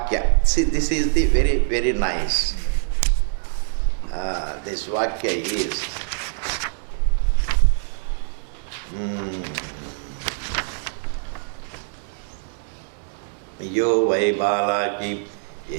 See, this is the very, very nice. This Vakya is Yo vai balaki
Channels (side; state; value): left; silent; digital silence